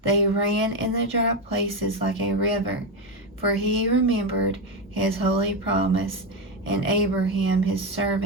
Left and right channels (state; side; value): normal; both; correlation 0.10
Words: They ran in the dry places like a river, for he remembered his holy promise and Abraham his